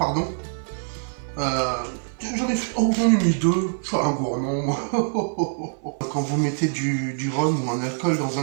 J'en ai mis 2, je suis un gourmand. Quand vous mettez du rhum ou un alcool dans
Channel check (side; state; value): left; silent; 56 dB below the other